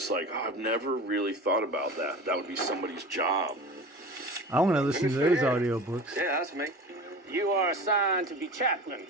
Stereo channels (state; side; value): normal; both; correlation 0.35